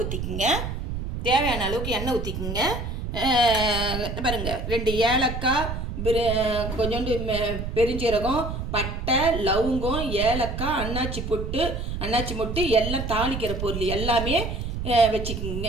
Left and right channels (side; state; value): right; noise; rumble, 4 dB below the sound